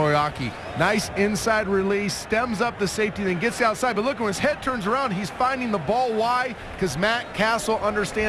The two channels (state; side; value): identical; both; correlation 1.00